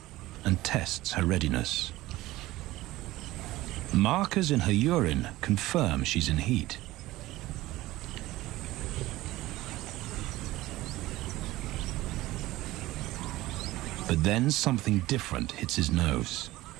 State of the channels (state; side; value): quieter; left; 17.6 dB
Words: and tests her readiness. Markers in her urine confirm she's in heat. But then something different hits his nose.